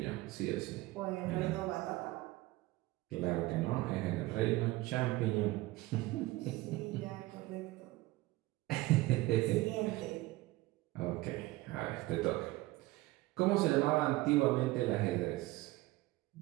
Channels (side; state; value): left; quieter; 19.1 dB